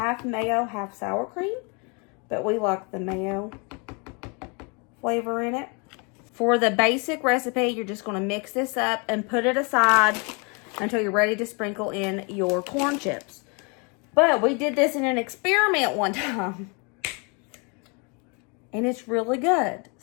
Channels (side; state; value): right; quieter; 32.8 dB